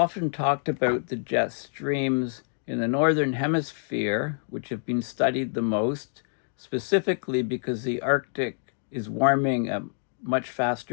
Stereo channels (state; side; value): silent; right; digital silence